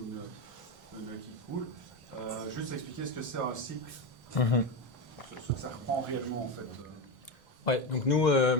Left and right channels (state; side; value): normal; both; correlation 0.15